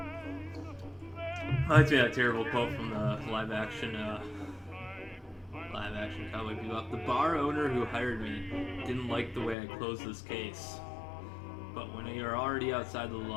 Reminds me of that terrible quote from the live action Cowboy Bebop. The bar owner who hired me didn't like the way I closed this case. But when you're already outside the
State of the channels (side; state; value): right; drops out; at 9.6 s